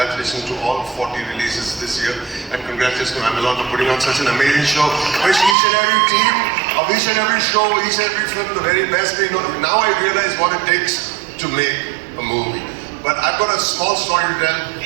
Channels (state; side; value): drops out; left; at 5.6 s